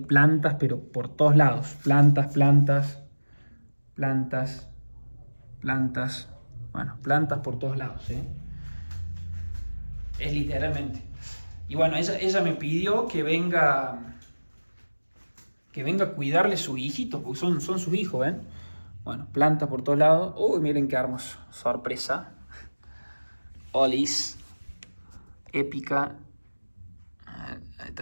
pero por todos lados. Plantas, plantas, plantas, plantas. Bueno, plantas por todos lados, ¿eh? Es literalmente. Y bueno, ella me pidió que venga a cuidarle sus hijitos, porque son sus hijos, ¿ven? Bueno, plantas por todos lados. Uy, miren qué hermoso. Sorpresa. Olis. Épica. Ahí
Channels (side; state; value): both; inverted; correlation -1.00